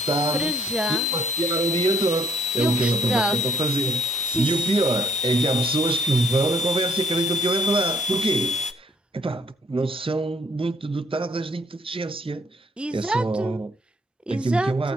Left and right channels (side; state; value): both; normal; correlation 0.64